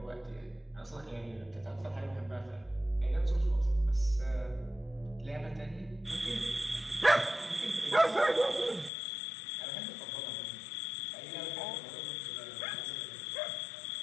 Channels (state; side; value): drops out; right; at 8.9 s